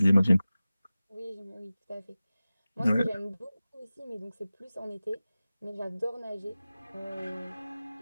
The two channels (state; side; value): inverted; both; correlation -0.97